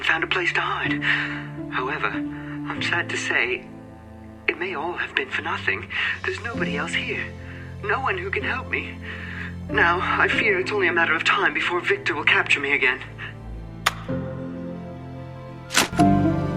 found a place to hide. However, I'm sad to say, it may all have been for nothing. There's nobody else here. No one who can help me. Now, I fear it's only a matter of time before Victor will capture me again.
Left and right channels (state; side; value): identical; both; correlation 1.00